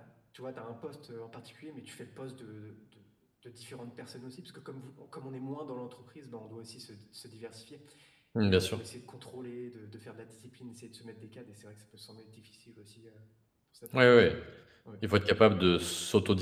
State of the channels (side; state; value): both; identical; correlation 1.00